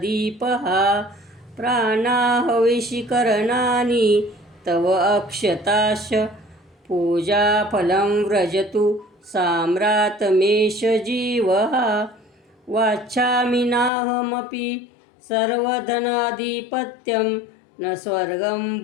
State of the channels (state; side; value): drops out; right; at 13.9 s